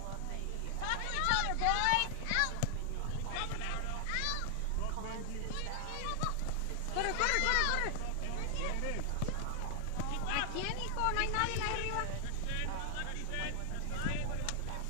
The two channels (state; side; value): different; both; correlation 0.00